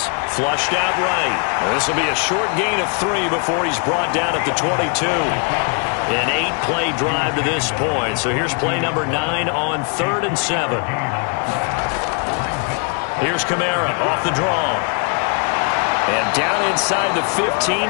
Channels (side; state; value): right; quieter; 38.0 dB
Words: flushed out right. This will be a short gain of 3 before he's brought down at the 22. An 8-play drive to this point. So here's play number 9 on 3rd and 7. Here's Kamara off the draw. And down inside the